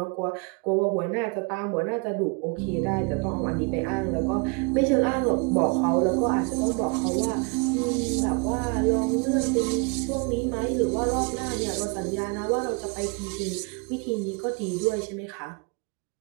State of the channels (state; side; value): quieter; left; 32.0 dB